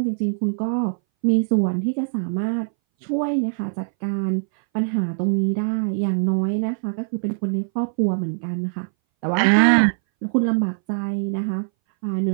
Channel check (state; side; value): silent; left; 61 dB below the other